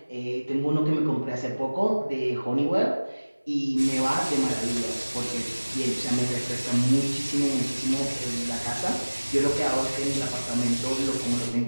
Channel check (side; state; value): both; inverted; correlation -1.00